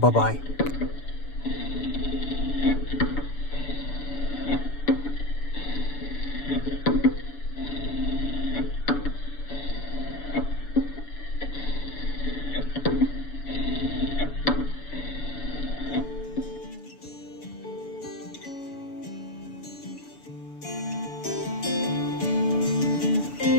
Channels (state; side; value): late; right; 7.0 ms